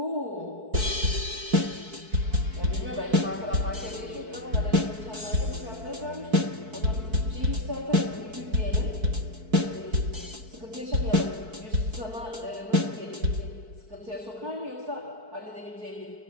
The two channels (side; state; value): left; late; 4.6 ms